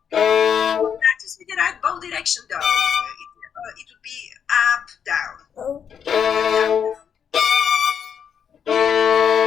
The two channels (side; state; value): right; quieter; 7.7 dB